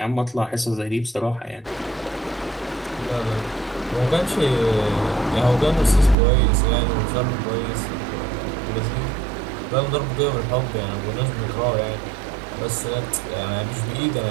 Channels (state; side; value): drops out; left; at 6.2 s